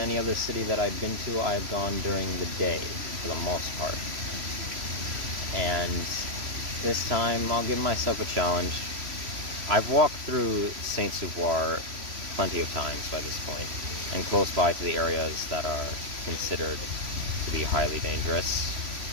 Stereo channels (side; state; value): left; late; 3.0 ms